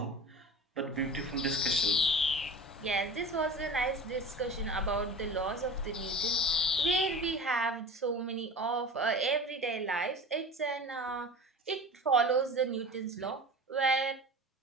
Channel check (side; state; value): both; normal; correlation 0.35